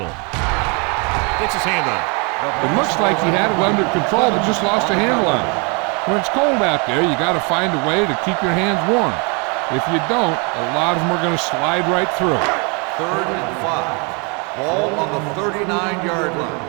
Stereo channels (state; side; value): quieter; left; 33.1 dB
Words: Gets his hand on it. It looks like he had it under control, but just lost a handle on it. When it's cold out there, you got to find a way to keep your hands warm. If you don't, a lot of them are going to slide right through. Third and 5. Ball on the 39-yard line.